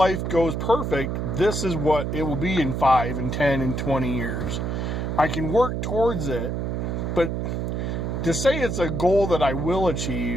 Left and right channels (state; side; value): noise; right; hum, 2 dB below the sound